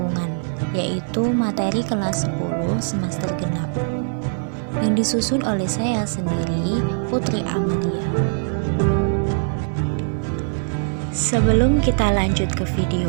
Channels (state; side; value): silent; left; digital silence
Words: yaitu materi kelas 10 semester genap, yang disusun oleh saya sendiri, Putri Amalia. Sebelum kita lanjut ke video